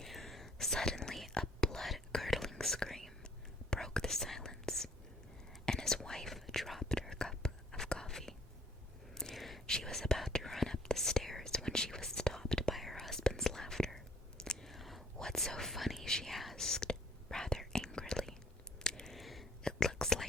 Suddenly, a blood-curdling scream broke the silence, and his wife dropped her cup of coffee. She was about to run up the stairs when she was stopped by her husband's laughter. "What's so funny?" she asked, rather angrily. "It looks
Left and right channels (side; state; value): both; normal; correlation 0.59